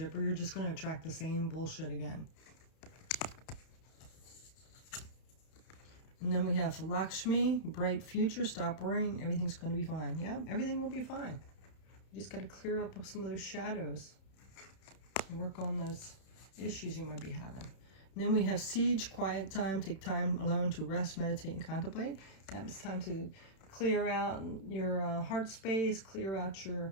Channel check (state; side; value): late; right; 31 ms